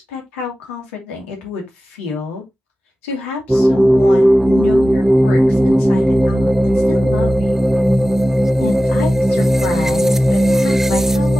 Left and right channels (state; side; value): normal; both; correlation 0.95